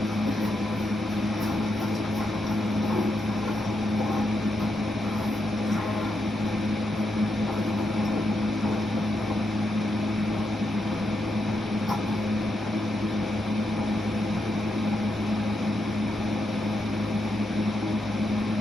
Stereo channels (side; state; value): both; normal; correlation 0.82